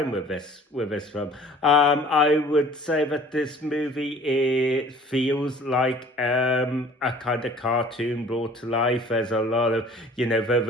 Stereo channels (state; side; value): normal; both; correlation 0.50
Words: with this film. I would say that this movie feels like a kind of cartoon brought to life. There's a lot of